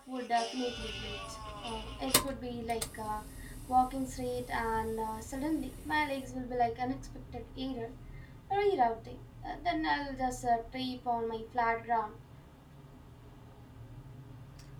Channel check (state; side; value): identical; both; correlation 1.00